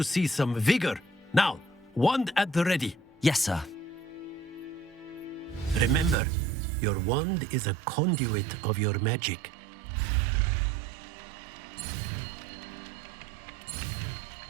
see some vigor. Now, wand at the ready. Yes, sir. Remember, your wand is a conduit of your magic.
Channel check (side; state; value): left; drops out; at 6.2 s